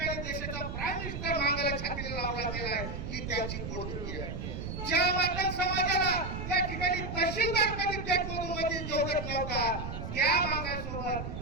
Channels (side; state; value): right; noise; rumble, 6 dB below the sound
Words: देशाचा प्राईम मिनिस्टर मागायला छातीला लावला गेला आहे. ही त्यांची पोटदुखी आहे. ज्या मातंग समाजाला होता त्या